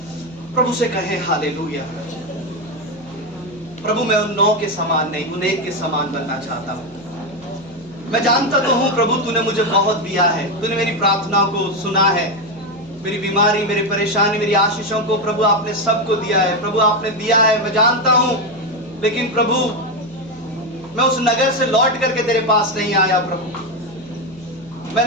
प्रभु से कहें हालेलुया। प्रभु मैं उन 9 के समान नहीं, उन 1 के समान बनना चाहता हूँ। मैं जानता तो हूँ प्रभु तूने मुझे बहुत दिया है, तूने मेरी प्रार्थनाओं को सुना है, मेरी बीमारी, मेरी परेशानी, मेरी आशीषों को प्रभु आपने सबको दिया है। प्रभु आपने दिया है, मैं जानता हूँ। लेकिन प्रभु मैं उस नगर से लौट करके तेरे पास नहीं आया प्रभु।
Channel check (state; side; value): noise; right; hum, 24 dB below the sound